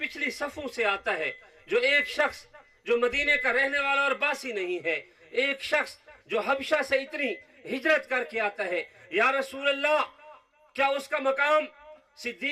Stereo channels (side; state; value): both; identical; correlation 1.00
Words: صفوں سے آتا ہے، جو ایک شخص جو مدینے کا رہنے والا اور باسی نہیں ہے، ایک شخص جو حبشہ سے اتنی ہجرت کر کے آتا ہے، یا رسول اللہ کیا اس کا مقام